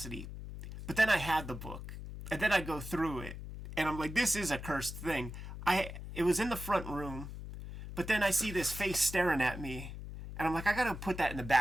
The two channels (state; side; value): noise; left; hum, 10 dB below the sound